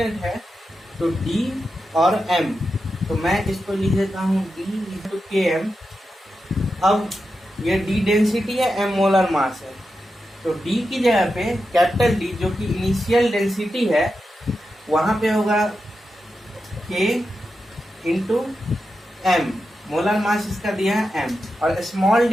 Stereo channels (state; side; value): normal; both; correlation 0.89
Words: है। तो d और m, तो मैं इसको लिख देता हूँ d टू के एम। अब ये d डेंसिटी है, m मोलर मास है, तो d की जगह पे कैपिटल D जो कि इनिशियल डेंसिटी है, वहां पे होगा k into m, molar mass इसका दिया है m, और स्मॉल